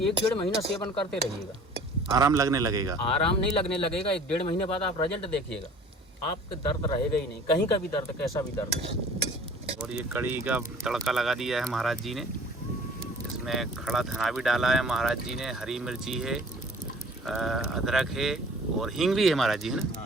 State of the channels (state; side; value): normal; both; correlation 0.49